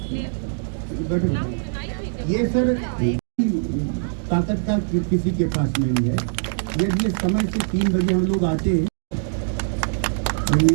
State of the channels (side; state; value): left; silent; digital silence